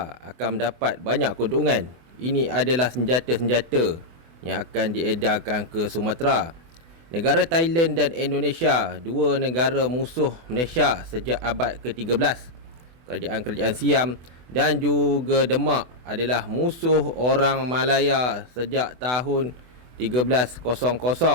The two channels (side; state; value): left; late; 24 ms